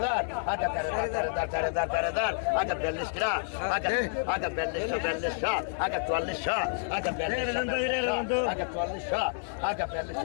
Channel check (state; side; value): silent; right; digital silence